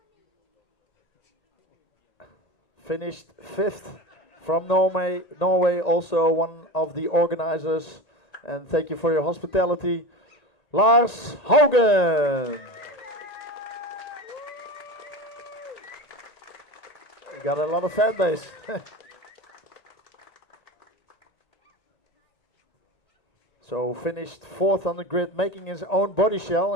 Finished 5th from Norway, also one of the organizers. And thank you for your hospitality, Lars Haugen. You got a lot of fan base. So finished 4th on the grid, making his own body shell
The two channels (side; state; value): right; late; 1.8 ms